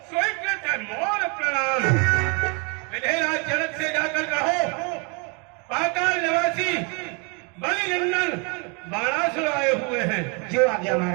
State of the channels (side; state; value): left; quieter; 33.2 dB